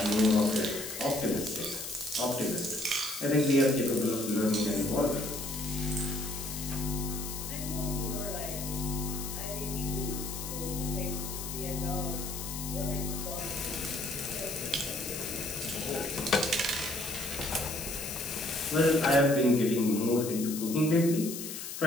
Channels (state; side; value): noise; left; hiss, 7 dB below the sound